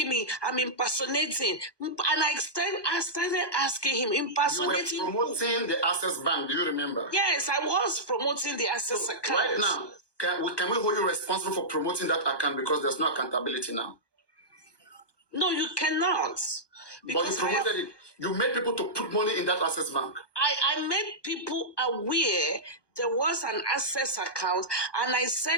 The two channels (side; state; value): right; late; 1.2 ms